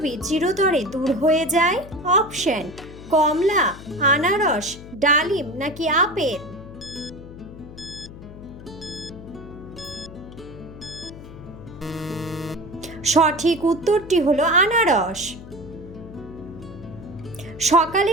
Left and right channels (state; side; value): noise; left; hum, 15 dB below the sound